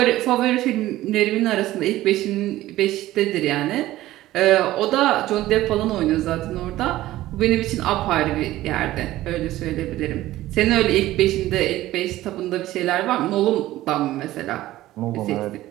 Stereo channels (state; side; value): quieter; left; 15.7 dB